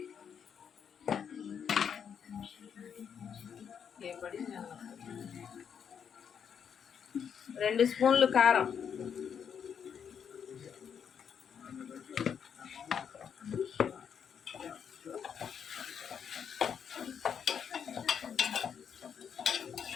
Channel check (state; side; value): quieter; right; 7.6 dB